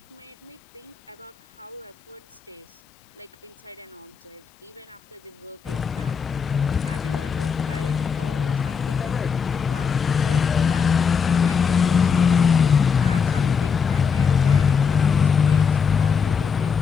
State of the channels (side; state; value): right; quieter; 6.3 dB